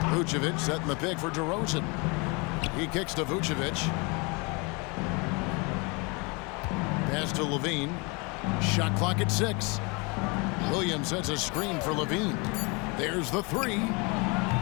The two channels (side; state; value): right; quieter; 29.5 dB